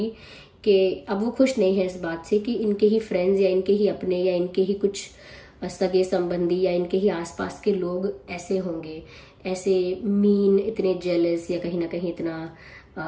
कि अब वो खुश नहीं है इस बात से कि इनके ही फ्रेंड्स या इनके ही अपने या इनके ही कुछ सगे संबंधी या इनके ही आसपास के लोग ऐसे होंगे, ऐसे मीन, इतने जेलस, या कहीं ना कहीं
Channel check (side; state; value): both; identical; correlation 1.00